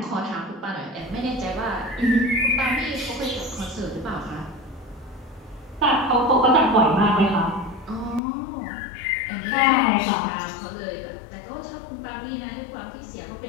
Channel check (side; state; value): right; drops out; at 8.2 s